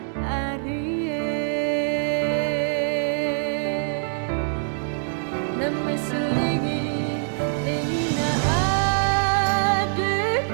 arie. Namai selingi, lingi na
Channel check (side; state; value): left; silent; digital silence